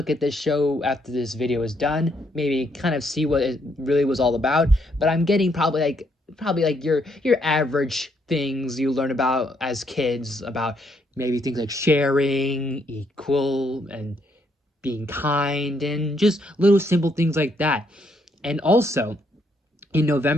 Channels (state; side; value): normal; both; correlation 0.73